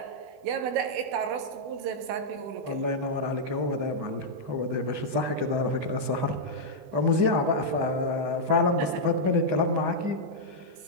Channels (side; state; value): left; late; 20 ms